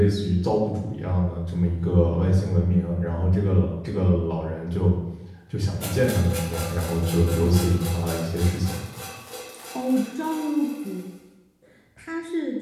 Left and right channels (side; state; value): both; identical; correlation 1.00